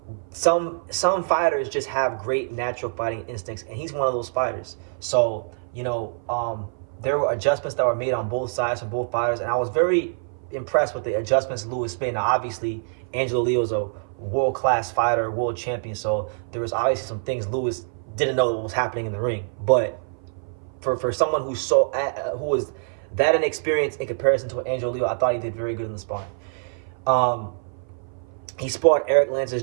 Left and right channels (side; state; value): left; silent; 56 dB below the other